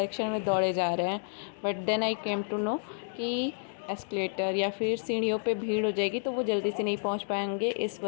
में दौड़े जा रहे हैं। But then I came to know कि एस्केलेटर या फिर सीढ़ियों पे भीड़ हो जाएगी तो वो जल्दी से नहीं पहुंच पाएंगे, इस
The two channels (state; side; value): silent; right; digital silence